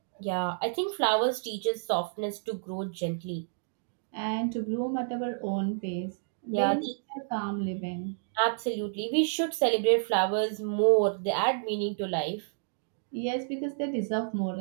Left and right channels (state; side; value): silent; left; digital silence